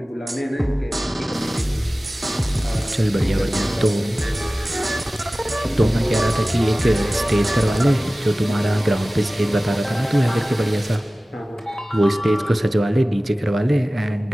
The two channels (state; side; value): normal; both; correlation 0.97